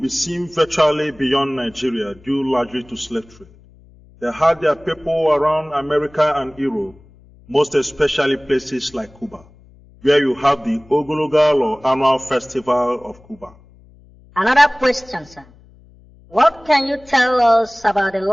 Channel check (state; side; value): noise; left; hum, 26 dB below the sound